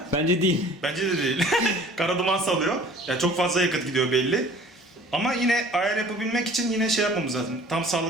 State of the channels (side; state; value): both; normal; correlation 0.49